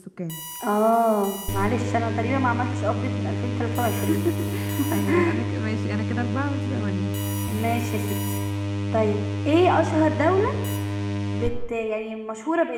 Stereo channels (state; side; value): identical; both; correlation 1.00